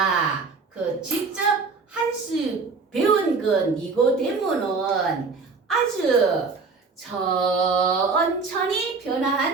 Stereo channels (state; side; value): quieter; left; 4.4 dB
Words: 직접 한 수 배운 니고데모는 아주 천천히